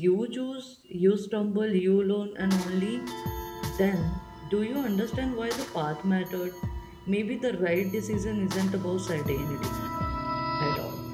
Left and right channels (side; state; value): both; identical; correlation 1.00